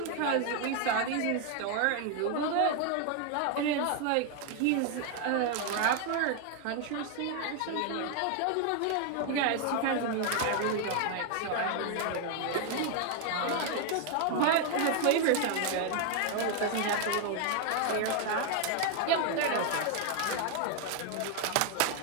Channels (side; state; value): both; different; correlation 0.01